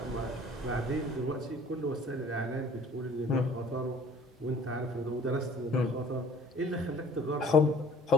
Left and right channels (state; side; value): normal; both; correlation 0.52